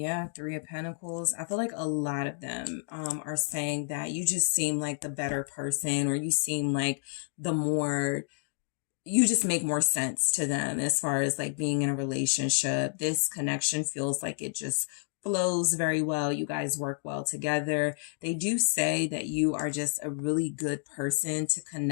Three of Pentacles. I feel like a lot of them are saying that you just seem like the better person, or you seem like you just make more sense to them as far as like being in a relationship. This connection feels like it just flows very well. You guys work well together. They do say that you are just a really good person to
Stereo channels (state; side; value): silent; right; 58 dB below the other